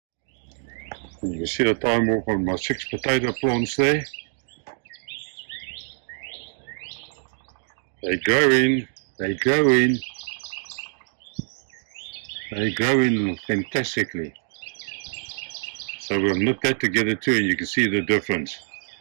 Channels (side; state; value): left; silent; digital silence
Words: And you can see the time warp on my 6 potato plants there. They're growing, they're growing, they're growing fantastically. So we'll knit that together too, and you can see the difference